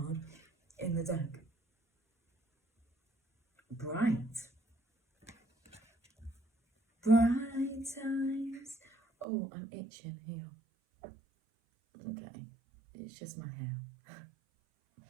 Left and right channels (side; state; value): left; drops out; at 9.2 s